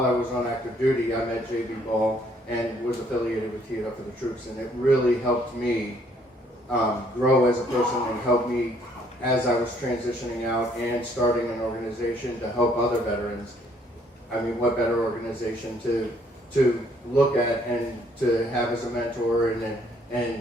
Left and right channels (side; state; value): both; normal; correlation 0.65